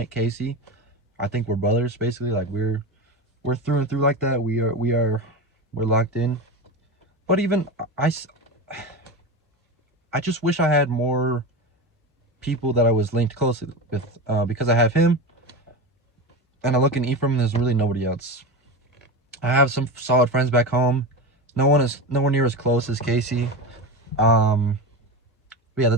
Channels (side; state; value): both; normal; correlation 0.22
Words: Casey. I think we're brothers, basically. Like we're through and through like that. We're locked in. But even I just wish I had more people that I was linked closely with, because I have him, and I look in Ephraim, there's really nobody else. I have some solid friends back home. No one is nowhere near as close as Casey. But yeah,